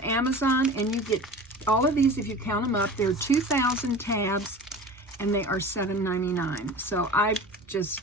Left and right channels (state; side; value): normal; both; correlation 0.36